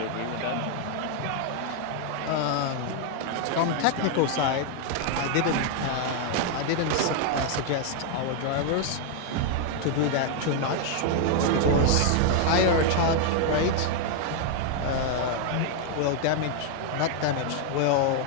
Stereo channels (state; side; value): different; both; correlation 0.00